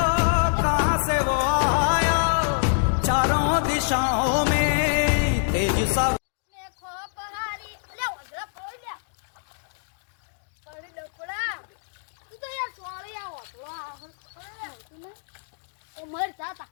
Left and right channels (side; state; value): right; silent; digital silence